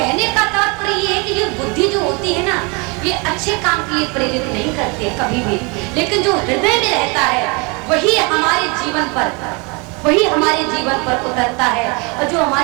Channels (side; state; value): left; quieter; 30.3 dB